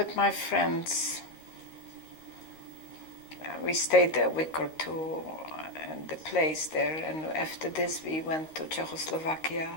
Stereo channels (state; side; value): late; right; 13 ms